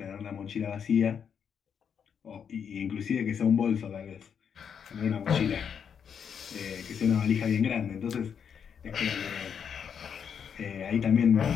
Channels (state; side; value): quieter; right; 7.4 dB